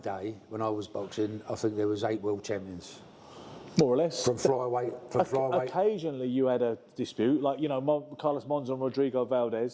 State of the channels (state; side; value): identical; both; correlation 1.00